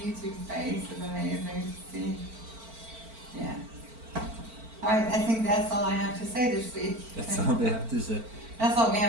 face is amazing to see. Yeah. Alright, I think that's all I have to say this week. That's all we have to say. That's all we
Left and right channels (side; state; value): left; late; 4.5 ms